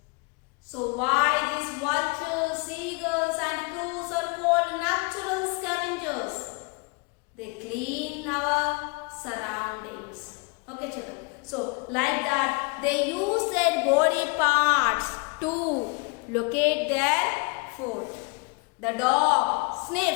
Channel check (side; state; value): right; quieter; 30.8 dB